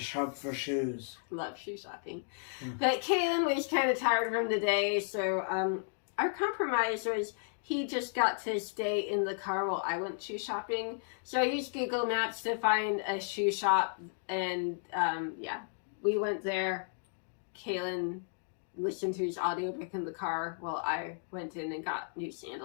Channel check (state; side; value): silent; right; digital silence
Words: for shoes. Love shoe shopping. But Kaylin was kind of tired from the day, so our compromise was he just got to stay in the car while I went shoe shopping. So I used Google Maps to find a shoe shop, and yeah, we went there. Kaylin listened to his audiobook in the car while I went in and got new